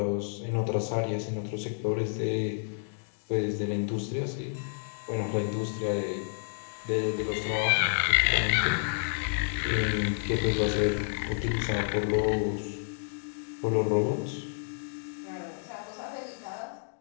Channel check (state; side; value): silent; right; digital silence